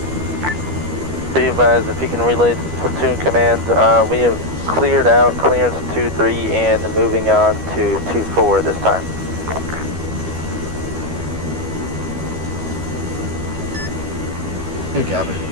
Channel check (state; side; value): late; left; 12 ms